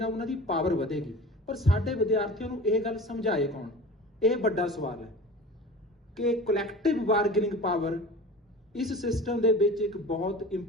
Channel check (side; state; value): both; normal; correlation 0.37